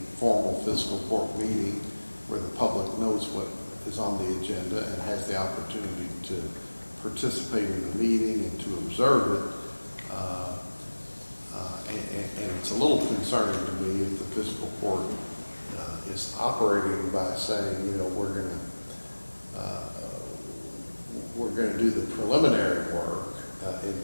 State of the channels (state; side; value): inverted; both; correlation -1.00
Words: formal fiscal court meeting where the public knows what is on the agenda and has the opportunity to participate in the meeting and to observe it. And it's a little concerning to me if the fiscal court is operating by saying, we're going to do the preliminary work in